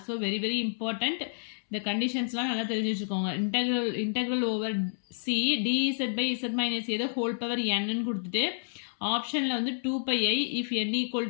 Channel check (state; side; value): silent; right; 58 dB below the other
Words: So very very important. இந்த கண்டிஷன்ஸ்லாம் நல்லா தெரிஞ்சு வச்சுக்கோங்க. Integral over C dz by z minus A the whole power n கொடுத்துட்டு ஆப்ஷனில் வந்து 2 pi I if n equal